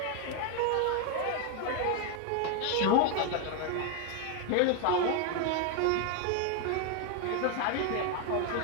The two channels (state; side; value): different; both; correlation 0.01